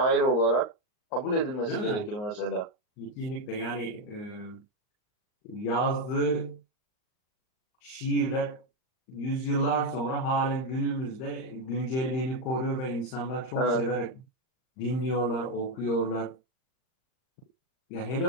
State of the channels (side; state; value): right; late; 39 ms